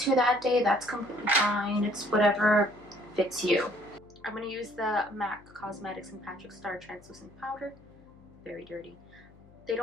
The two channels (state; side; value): noise; left; hum, 25 dB below the sound